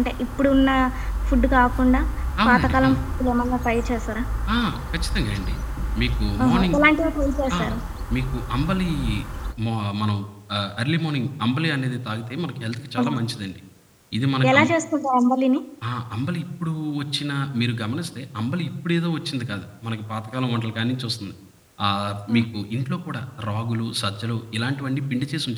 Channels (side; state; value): both; identical; correlation 1.00